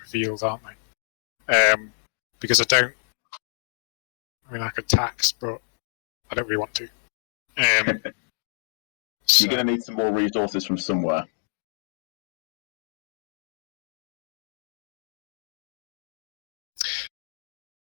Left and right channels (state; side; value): silent; right; digital silence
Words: aren't they? Because I don't. I mean, I could tax, but I don't really want to. You're going to need some more resources from somewhere.